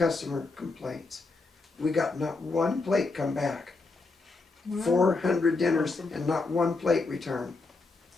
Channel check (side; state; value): right; quieter; 3.7 dB